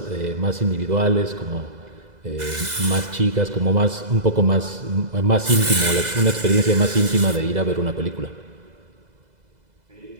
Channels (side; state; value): left; late; 2.0 ms